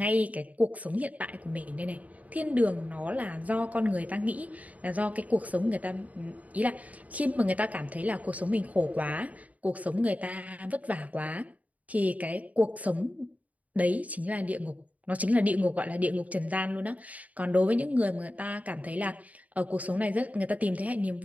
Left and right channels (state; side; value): late; left; 0.071 ms